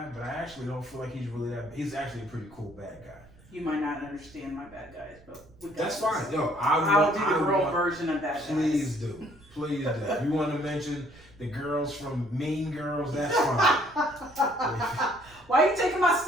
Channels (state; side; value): noise; right; rumble, 25 dB below the sound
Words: but I actually don't feel like he's really that... He's actually a pretty cool bad guy. You might not understand my bad guys, but we got That's fine. Yo, I'll do the girl version of bad guys. Please do. Please do. If you want to mention the girls from Mean Girls, that's fine. Why are you taking my